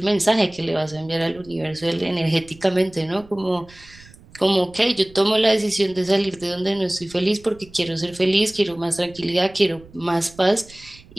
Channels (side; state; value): right; noise; rumble, 23 dB below the sound